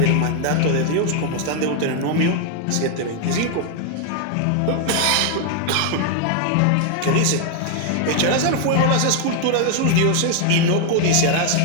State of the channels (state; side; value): different; both; correlation 0.00